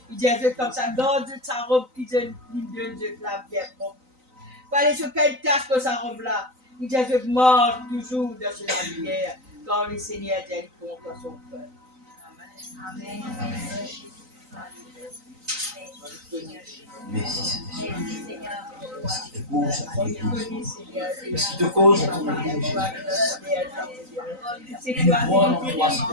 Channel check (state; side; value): late; left; 3.9 ms